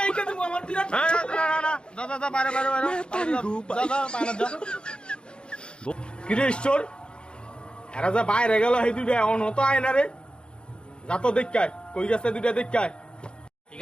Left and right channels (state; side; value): late; right; 0.052 ms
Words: আমার বিরাট দাদা বাইরে কিরে ঈশ্বর, এরা যা বাইরে গেল সেই দুইটা অন হতো আয় না রে। যা তো দেখায়, কই গেছে দুইটা দেখায়। ঠিক